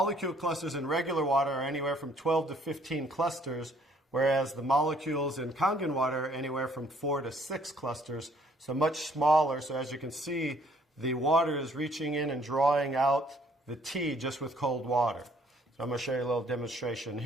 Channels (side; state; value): both; normal; correlation 0.62